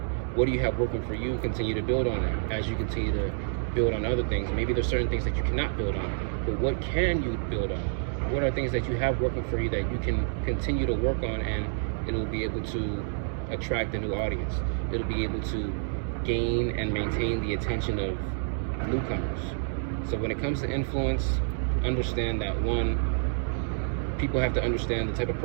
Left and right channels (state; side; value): silent; left; digital silence